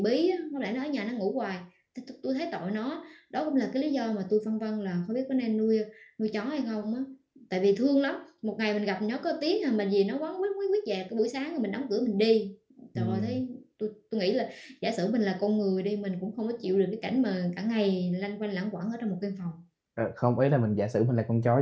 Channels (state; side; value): identical; both; correlation 1.00